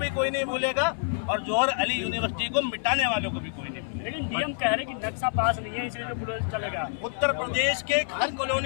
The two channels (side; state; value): right; silent; 56 dB below the other